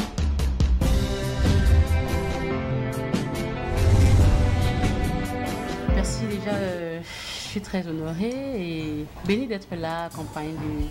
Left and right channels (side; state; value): both; identical; correlation 1.00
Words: Merci déjà, je suis très honorée et bénie d'être là, accompagnée de